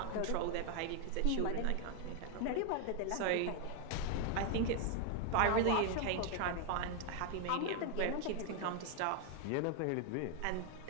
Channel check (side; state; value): both; different; correlation 0.00